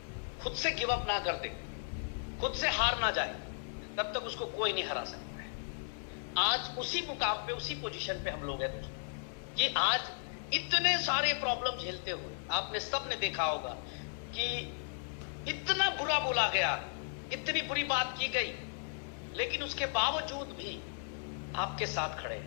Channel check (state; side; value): silent; right; 54 dB below the other